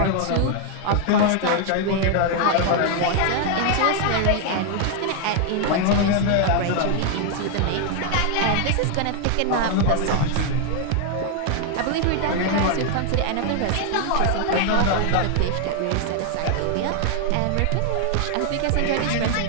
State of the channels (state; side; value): different; both; correlation 0.00